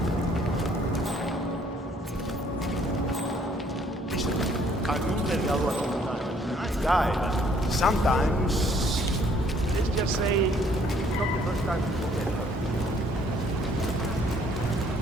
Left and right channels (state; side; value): normal; both; correlation 0.63